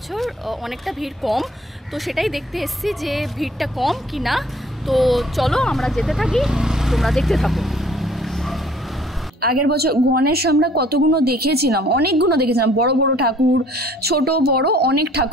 অনেকটা ভিড় কম, তো সেটাই দেখতে এসেছি যে ভিড়টা কম কি না। তো চলো আমরা যেতে থাকি, তোমরা দেখতে থাকো। আগের বছর গণেশ আমরা কতগুলো দেখেছিলাম, অনেকগুলো দেখেছিলাম, বড় বড় ঠাকুর, ছোট বড় অনেক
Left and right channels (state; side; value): normal; both; correlation 0.56